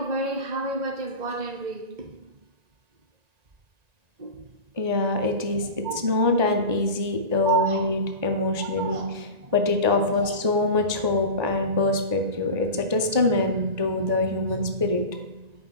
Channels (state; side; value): late; left; 1.9 ms